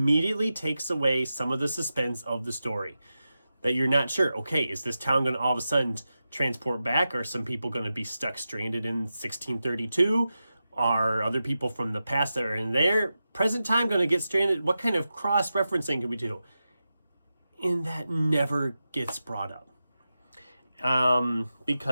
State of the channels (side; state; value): both; inverted; correlation -0.92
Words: takes away some of the suspense of the story. That you're not sure, okay, is this town going to all of a sudden transport back? Are some people going to be stuck stranded in 1632? Are other people from the past that are in their present time going to get stranded? What kind of cross-referencing can we do? And that never gets brought up.